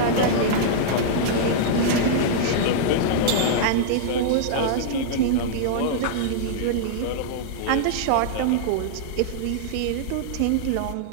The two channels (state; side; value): different; both; correlation -0.02